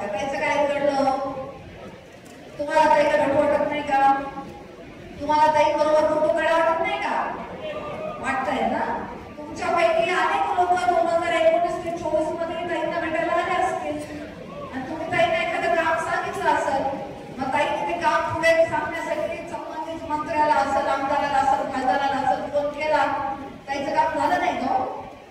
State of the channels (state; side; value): identical; both; correlation 1.00